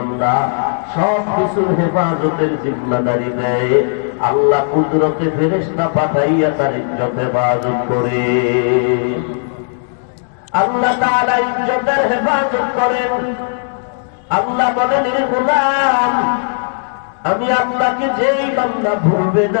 সব কিছুর হেফাজতের জিম্মাদারি দেয়, আল্লাহ কুদরতে ফেরেশতা পাঠাইয়া তার ইজ্জত হেফাজত করে। আল্লাহ তাআলা ইজ্জতের হেফাজত করেন। আল্লাহ বলেন, হে গোলাম, আমি আল্লাহকে যেই বান্দা ভুলবে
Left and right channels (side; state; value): right; silent; digital silence